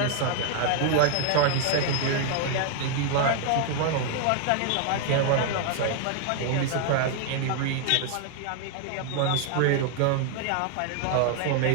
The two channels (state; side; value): different; both; correlation 0.00